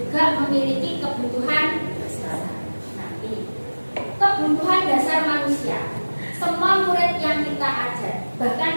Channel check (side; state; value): both; inverted; correlation -1.00